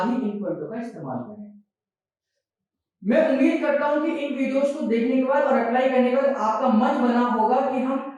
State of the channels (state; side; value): identical; both; correlation 1.00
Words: ही इन पॉइंटों का इस्तेमाल करें। मैं उम्मीद करता हूं कि इन वीडियोस को देखने के बाद और अप्लाई करने के बाद आपका मन बना होगा कि